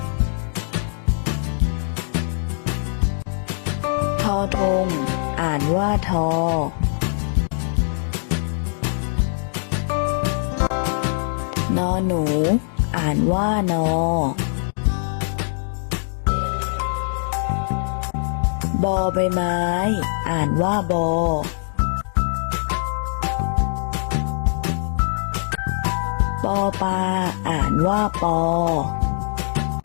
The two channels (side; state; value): right; silent; digital silence